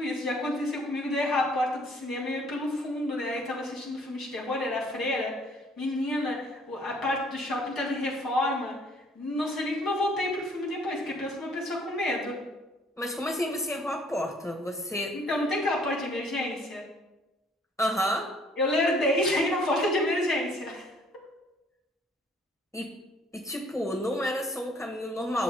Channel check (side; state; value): both; normal; correlation 0.60